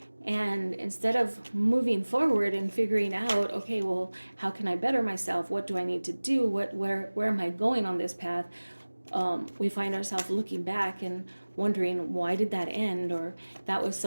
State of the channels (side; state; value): both; inverted; correlation -1.00